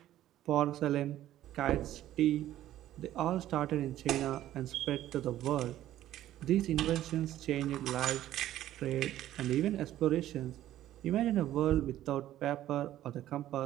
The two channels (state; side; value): quieter; left; 13.2 dB